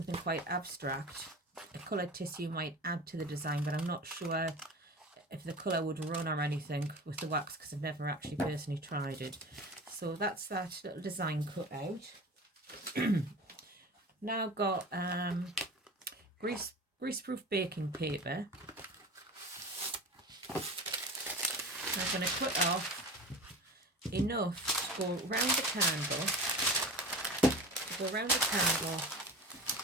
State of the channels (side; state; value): both; normal; correlation 0.34